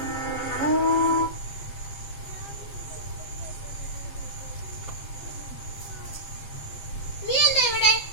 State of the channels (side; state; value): right; late; 7.5 ms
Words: നീ എന്താ ഇവിടെ?